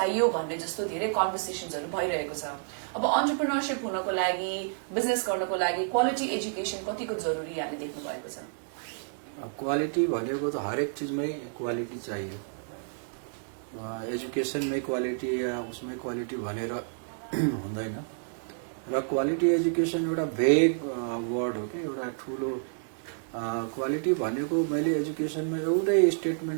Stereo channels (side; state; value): left; silent; 58 dB below the other